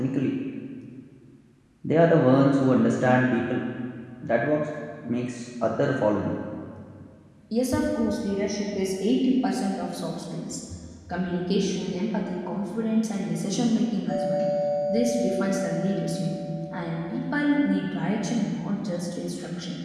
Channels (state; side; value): identical; both; correlation 1.00